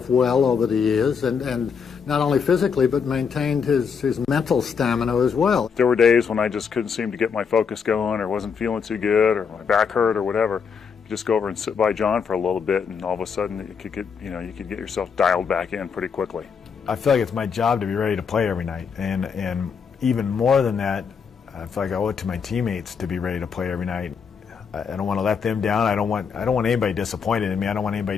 well over the years, and not only physically, but maintained his mental stamina as well. There were days when I just couldn't seem to get my focus going, or wasn't feeling too good, or my back hurt, or whatever. You just go over and sit by John for a little bit, and all of a sudden you could get yourself dialed back in pretty quickly. I feel like it's my job to be ready to play every night, and even more than that, I feel like I owe it to my teammates to be ready to play every night. I don't want to let them down. I don't want anybody disappointed in me. I don't want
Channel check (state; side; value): quieter; right; 6.3 dB